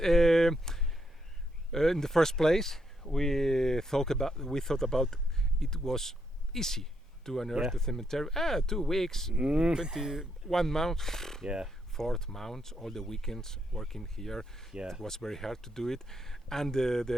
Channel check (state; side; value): normal; both; correlation 0.78